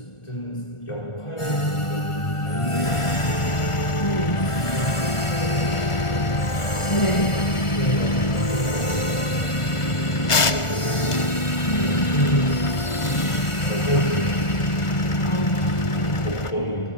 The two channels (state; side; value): late; right; 1.4 ms